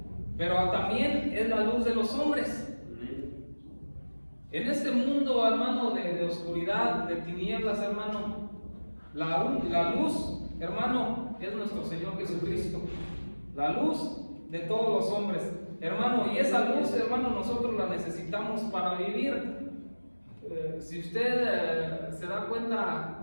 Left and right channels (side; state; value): both; inverted; correlation -1.00